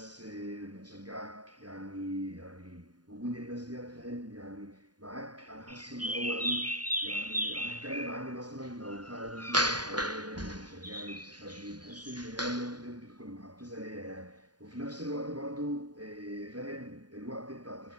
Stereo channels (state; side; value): late; left; 0.70 ms